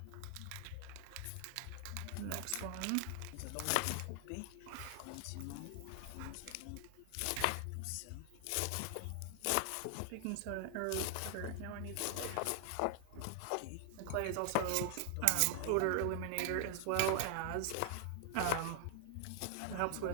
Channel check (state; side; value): different; both; correlation 0.00